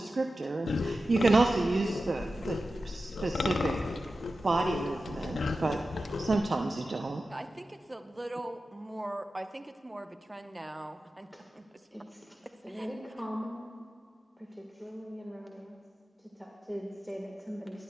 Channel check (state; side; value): normal; both; correlation 0.93